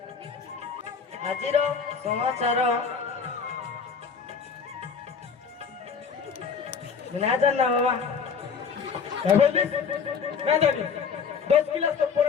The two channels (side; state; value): right; quieter; 6.1 dB